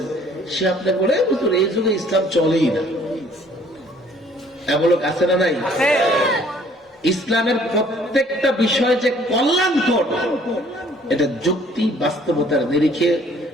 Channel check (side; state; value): both; normal; correlation 0.58